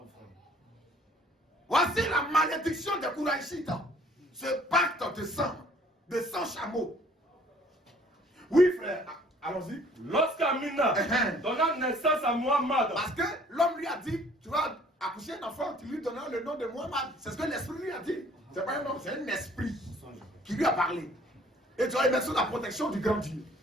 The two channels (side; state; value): both; normal; correlation 0.56